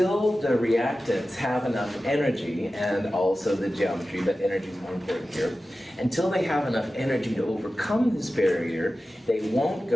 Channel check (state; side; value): normal; both; correlation 0.94